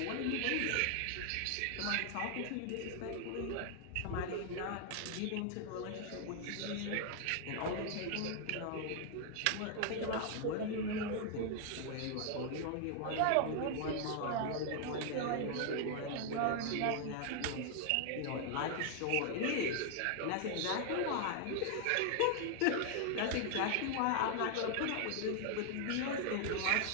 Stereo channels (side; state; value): both; different; correlation 0.00